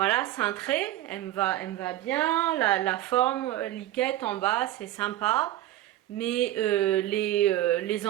cintré. Elle me va bien. La forme liquette en bas, c'est sympa. Mais les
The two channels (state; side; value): quieter; left; 14.4 dB